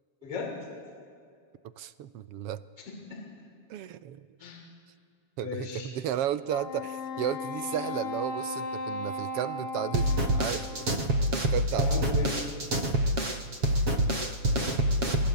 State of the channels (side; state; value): left; late; 7.3 ms